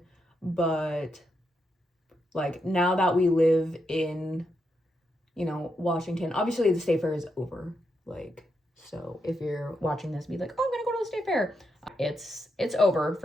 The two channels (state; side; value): normal; both; correlation 0.83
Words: But like, now that we live in, you know, Washington, obviously the state fair is over. Like, so if you're watching this, be like, oh, I'm gonna go to the state fair. It's over